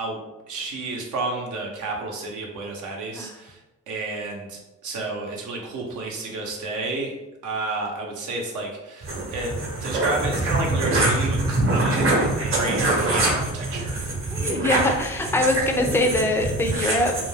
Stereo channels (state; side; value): normal; both; correlation 0.32